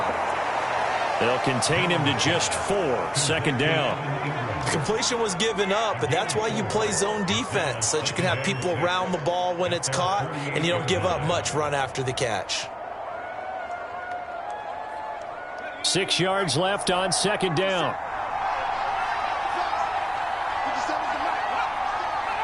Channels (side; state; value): both; identical; correlation 1.00